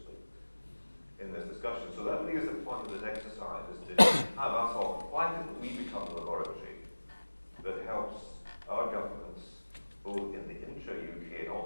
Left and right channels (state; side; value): inverted; both; correlation -1.00